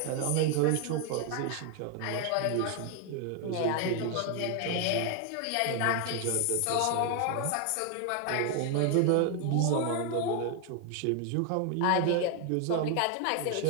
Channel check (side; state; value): both; different; correlation 0.01